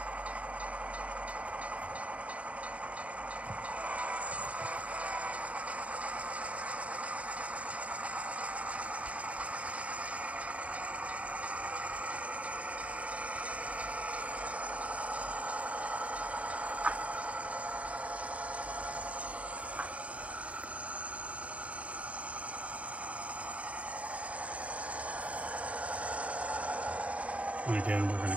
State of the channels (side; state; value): left; late; 0.065 ms